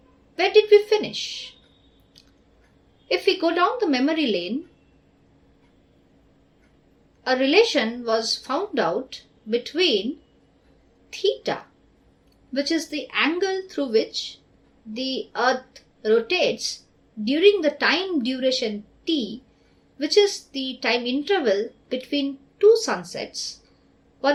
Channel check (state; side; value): identical; both; correlation 1.00